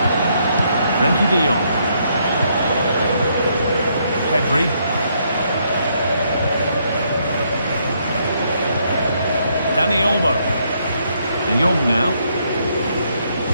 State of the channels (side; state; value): both; inverted; correlation -0.73